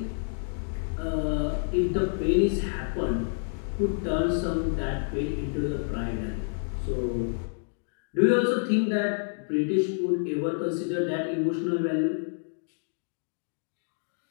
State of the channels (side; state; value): right; silent; digital silence